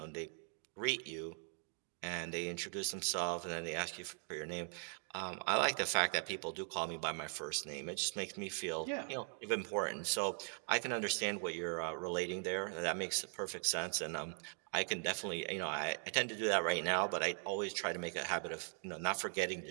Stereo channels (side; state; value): left; silent; 51 dB below the other